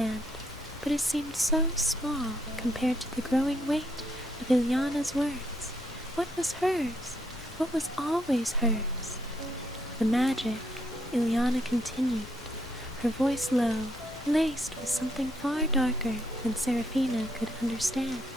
but it seemed so small compared to the growing weight of Ileana's words. What was hers? What was always hers? "The magic," Ileana continued, her voice low, laced with something far darker than Seraphina could understand.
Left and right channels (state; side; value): normal; both; correlation 0.74